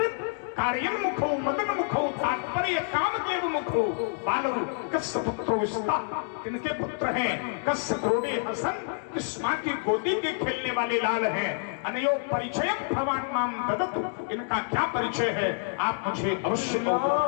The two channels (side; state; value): right; silent; 59 dB below the other